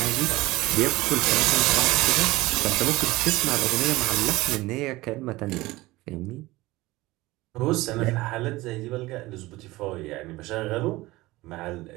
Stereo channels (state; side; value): quieter; left; 19.6 dB